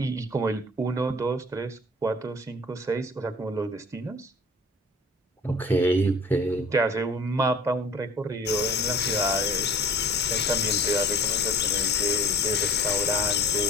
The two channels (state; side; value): normal; both; correlation 0.47